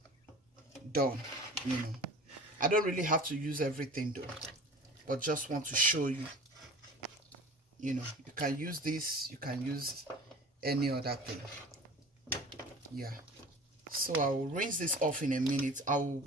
done, you know. I don't really have to use everything though, but just want to show you, you know, you can use this, you can use any other thing. Yeah, so I will rinse this off in a minute. I will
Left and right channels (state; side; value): normal; both; correlation 0.41